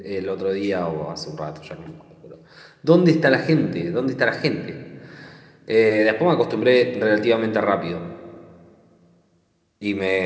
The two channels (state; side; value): identical; both; correlation 1.00